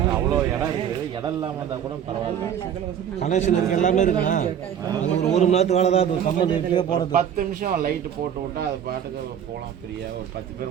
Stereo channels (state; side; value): quieter; left; 9.0 dB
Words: அவ்வளோ இடம் இருக்குது. இடம் இல்லாமல் இருந்தால் கூட பரவாயில்ல. கனெக்ஷன் இருக்கு, எல்லாமே இருக்குண்ணா. ஒரு மணி நேரத்துக்கு வேலை தான் கம்பெனி வீட்டிலே போகிறது. 10 நிமிஷம் லைட்டு போட்டு விட்டா அது பாட்டுக்கு போகலாம் ஃப்ரீயாக. ஒரு 10